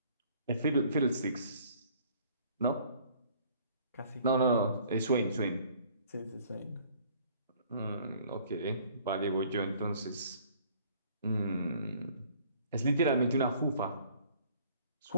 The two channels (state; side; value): inverted; both; correlation -0.57